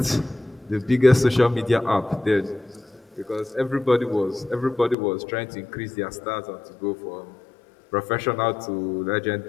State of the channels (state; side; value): drops out; right; at 5.0 s